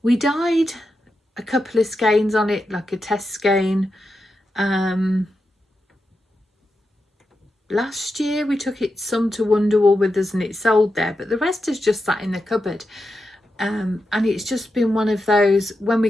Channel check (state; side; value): normal; both; correlation 0.88